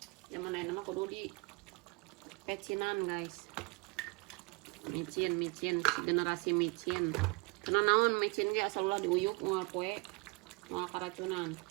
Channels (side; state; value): left; quieter; 28.7 dB